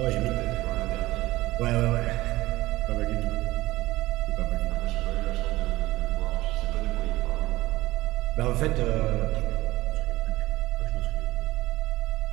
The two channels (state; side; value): quieter; left; 18.3 dB